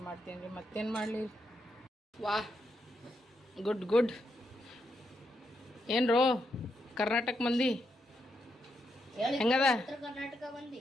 ಮಾಡ್ತೀನಿ ರೀ. ಮತ್ತೇನು ಮಾಡಲಿ. ವಾ, ಗುಡ್ ಗುಡ್. ಏನ್ರೋ ಕರ್ನಾಟಕ ಮಂದಿ ಹೆಂಗದ? ಉತ್ತರ ಕರ್ನಾಟಕ ಮಂದಿ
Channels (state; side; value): normal; both; correlation 0.81